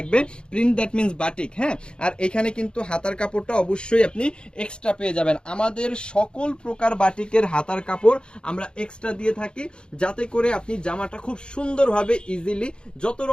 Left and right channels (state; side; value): late; right; 0.052 ms